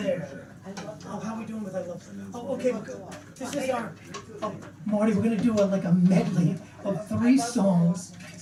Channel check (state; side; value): identical; both; correlation 1.00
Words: Oh, how are we doing with I Love? Oh, okay. This is our. Oh, Marty, we're gonna do like a medley of 3 songs,